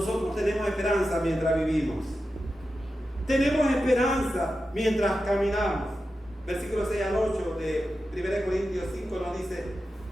tenemos esperanza mientras vivimos. Tenemos esperanza mientras caminamos. Versículo 6 al 8 de 1 Corintios 5 nos dice:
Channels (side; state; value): both; normal; correlation 0.91